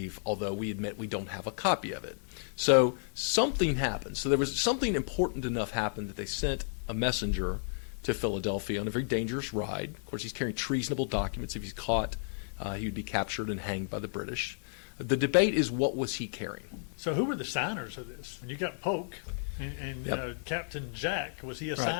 although we admit we don't have a copy of it. So something happened. So there was something important enough happened that they sent a messenger to Philadelphia on a very dangerous ride. Of course, he's carrying treasonable documents. If he's caught, he would be captured and hanged by the British. The debate is what was he carrying? So who were the signers of this? You got Polk and Yep. Captain Jack. Was he a Right.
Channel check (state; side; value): silent; right; 56 dB below the other